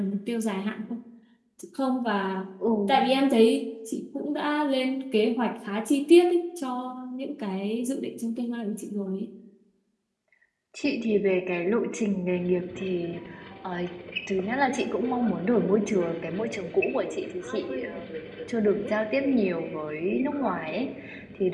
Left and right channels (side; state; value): both; identical; correlation 1.00